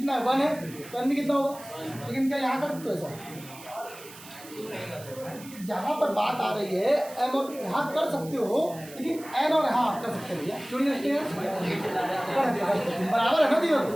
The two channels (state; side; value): noise; right; hiss, 18 dB below the sound